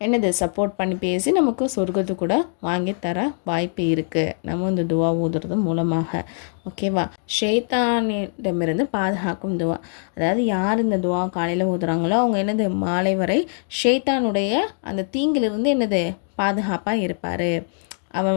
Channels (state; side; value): silent; right; 62 dB below the other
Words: என்னது சப்போர்ட் பண்ணி பேசி நமக்கு சொர்க்கத்து கூட வாங்கி தர வாய்ப்பு இருக்குது, நம்ம இந்த துவா ஊதுறது மூலமாக. ஓகேவா? ஷைத்தானிடமிருந்து பாதுகாக்கும் துவா. அதாவது யார் இந்த துவா காலையில் ஊதுறாங்களோ அவங்க என்னது மாலை வரை ஷைத்தானுடைய அந்த தீங்கிலிருந்து என்னது பாதுகாப்பாக இருப்பார்.